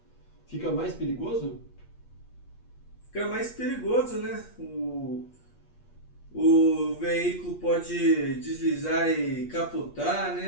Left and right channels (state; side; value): late; right; 8.4 ms